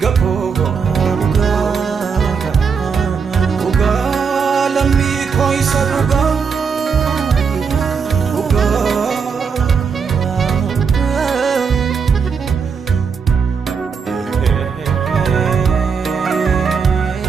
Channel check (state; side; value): quieter; left; 5.9 dB